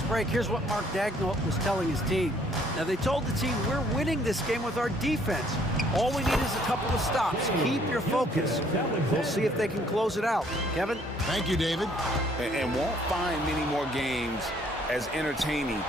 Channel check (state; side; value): normal; both; correlation 0.63